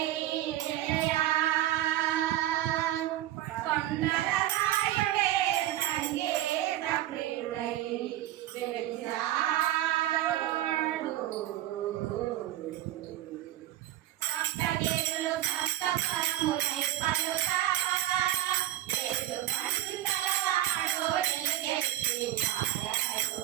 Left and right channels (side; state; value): left; quieter; 14.0 dB